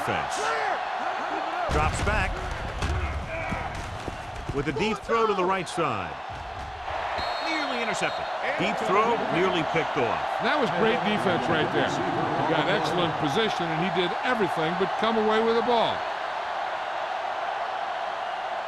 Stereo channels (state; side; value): identical; both; correlation 1.00